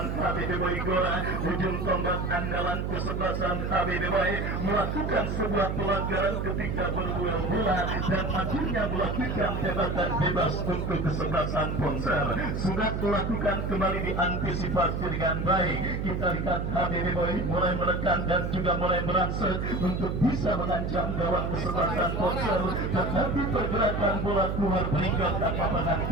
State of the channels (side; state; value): right; noise; hum, 2 dB below the sound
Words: HBB Boy Gora. Ujung tombak andalan kesebelasan HBB Boy melakukan sebuah pelanggaran ketika berduel bola dan akhirnya melakukan tembakan bebas untuk kesebelasan Ponser. Sudah dilakukan kembali diantisipasi dengan baik. Kita lihat HBB Boy mulai menekan dan juga mulai merangsek untuk bisa mengancam gawang kesebelasan Ponser. tetapi pergerakan bola keluar meninggalkan lapangan